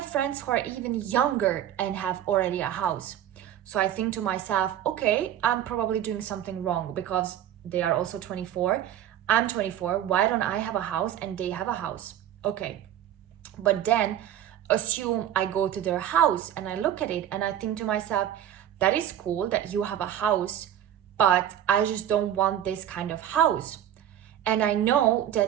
friends who are even younger and have already a house. So I think to myself, okay, I'm probably doing something wrong because they are also 24. I'm 24. Why don't I have a house and they have a house? Okay. But then assume I go to their house and I look at it and I think to myself, that is cool that you have a house, but I just don't want this kind of house. And I know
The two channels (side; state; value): left; quieter; 11.0 dB